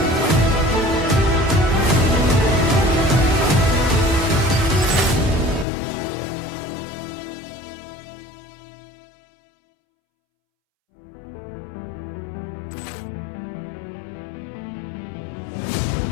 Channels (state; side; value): drops out; right; at 5.7 s